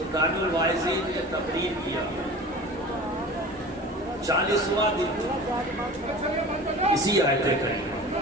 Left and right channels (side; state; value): both; normal; correlation 0.38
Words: الواعظین نے تقریر کیا، 40واں دن اسی آیت کریمہ،